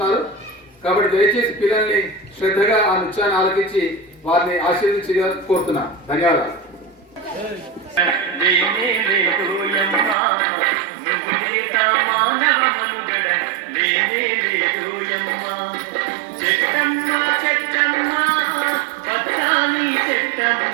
కాబట్టి దయచేసి పిల్లల్ని శ్రద్ధగా ఆ నృత్యాన్ని ఆలకించి వారిని ఆశీర్వదించి కోరుతున్నాను. ధన్యవాదాలు.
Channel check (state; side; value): drops out; left; at 10.2 s